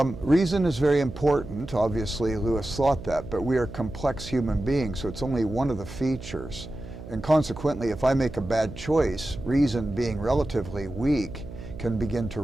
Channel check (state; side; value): noise; right; hum, 13 dB below the sound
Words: is very important. Obviously, Lewis thought that, but we are complex human beings, so it's only one of the features. And consequently, if I make a bad choice, reason being relatively weak can begin to